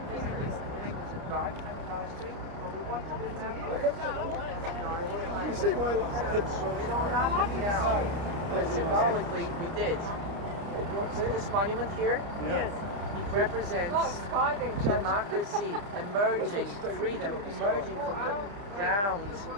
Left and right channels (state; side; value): late; left; 30 ms